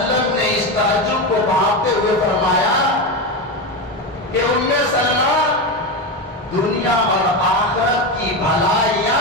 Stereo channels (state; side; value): normal; both; correlation 0.16